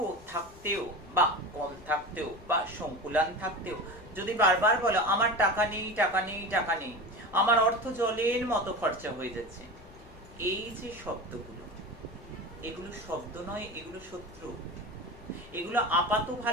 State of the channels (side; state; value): left; noise; rumble, 22 dB below the sound